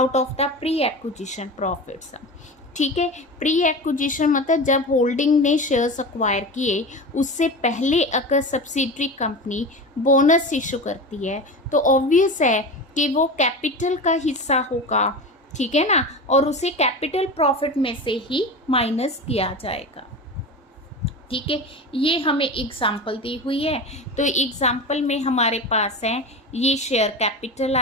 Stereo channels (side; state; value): both; normal; correlation 0.28